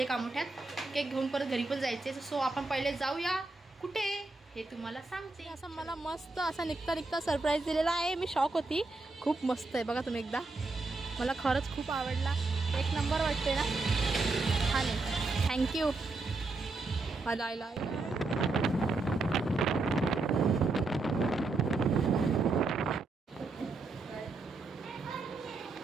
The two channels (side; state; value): left; quieter; 3.5 dB